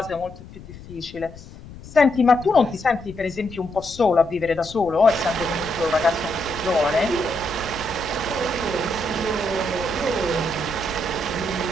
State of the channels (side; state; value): left; noise; rumble, 16 dB below the sound